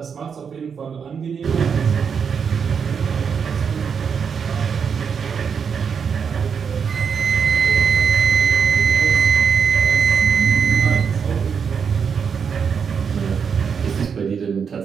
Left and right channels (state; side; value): quieter; left; 6.6 dB